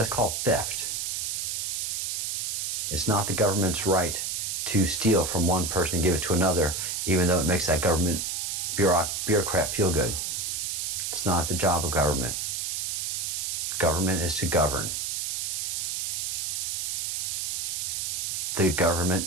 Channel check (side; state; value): right; noise; hiss, 1 dB below the sound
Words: called theft. It's not the government's right to steal from one person and give it to another, even though it makes that government bureaucrat feel good. It's not the job of government. Government is to govern. The